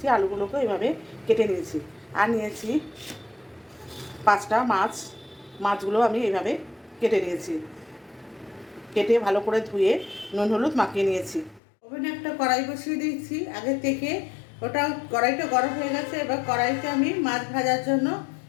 আলুগুলোকে এইভাবে কেটে নিয়েছি। আর নিয়েছি 5টা মাছ, মাছগুলো আমি এইভাবে কেটে নিয়েছি। কেটে ভালো করে ধুয়ে নুন হলুদ মাখিয়ে নিয়েছি। ওভেনে একটা কড়াই বসিয়ে দিয়েছি আগে থেকে, ওটা কড়াইটা গরম হয়ে গেছে। এবার কড়াইতে আমি মাছ ভাজার জন্য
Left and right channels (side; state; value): right; drops out; at 11.6 s